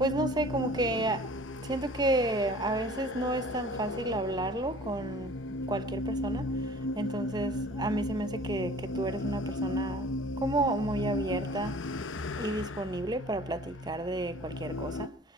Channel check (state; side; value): normal; both; correlation 0.48